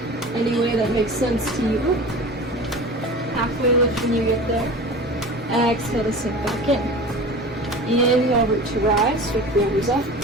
any way that makes sense to you. Halfway lift when you get there. Exhale to sink back in. Inhale, root to rise, sweep the arms up.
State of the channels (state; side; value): normal; both; correlation 0.36